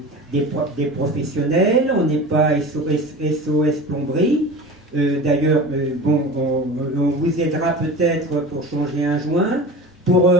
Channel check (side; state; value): both; normal; correlation 0.34